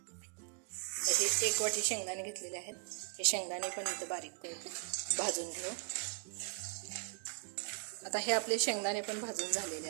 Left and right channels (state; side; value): quieter; left; 34.5 dB